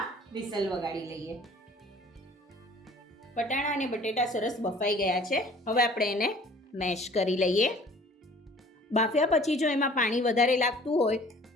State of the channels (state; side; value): normal; both; correlation 0.51